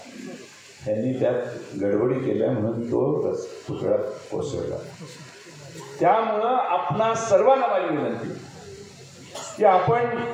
त्यांनी त्यात गडबडी केल्या म्हणून तो पुतळा कोसळला. त्यामुळं आपणा सर्वांना माझी विनंती की आपण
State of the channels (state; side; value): identical; both; correlation 1.00